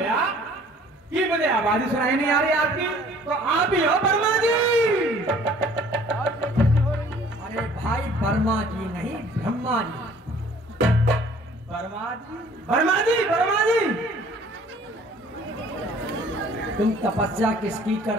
कि मुझे आवाज ही सुनाई नहीं आ रही आपकी। तो आप ही हो वर्मा जी? अरे भाई, वर्मा जी नहीं, ब्रह्मा जी। वर्मा जी? वर्मा जी, वर्मा जी। तुम तपस्या किसकी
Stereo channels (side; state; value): both; normal; correlation 0.54